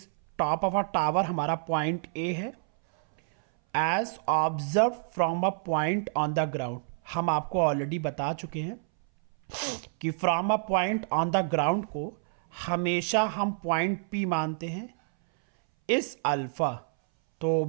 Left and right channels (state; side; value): silent; left; 59 dB below the other